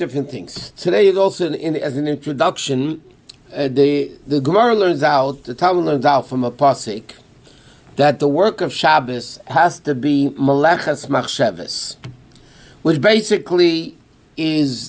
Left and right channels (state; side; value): identical; both; correlation 1.00